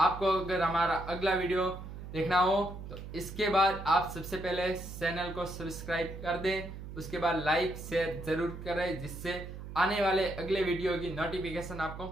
अगर हमारा अगला वीडियो देखना हो तो इसके बाद आप सबसे पहले चैनल को सब्सक्राइब कर दें, उसके बाद लाइक शेयर जरूर करें, जिससे आने वाले अगले वीडियो की नोटिफिकेशन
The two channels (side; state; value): right; noise; hum, 11 dB below the sound